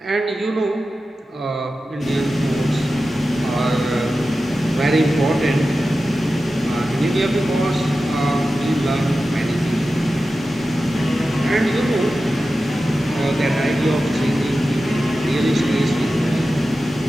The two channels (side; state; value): both; normal; correlation 0.93